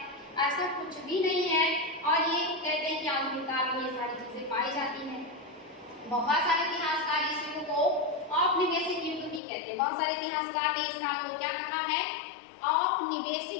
ऐसा कुछ भी नहीं है। और ये कहते हैं कि आधुनिक काल में ये सारी चीजें पाई जाती हैं। बहुत सारे इतिहासकार इस युग को औपनिवेशिक युग भी कहते हैं। बहुत सारे इतिहासकार ने इस काल को क्या कहा है?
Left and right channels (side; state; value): right; drops out; at 9.4 s